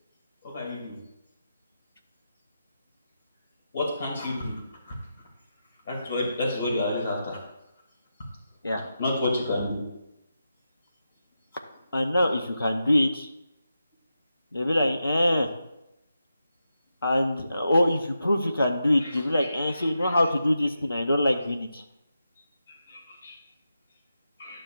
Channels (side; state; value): both; inverted; correlation -0.88